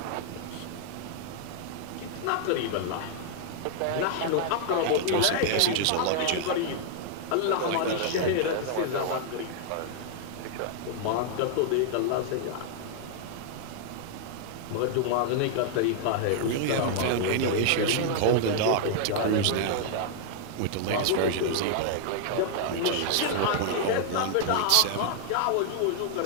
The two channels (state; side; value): different; both; correlation -0.01